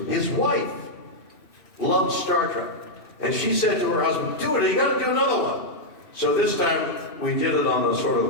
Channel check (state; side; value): late; right; 2.6 ms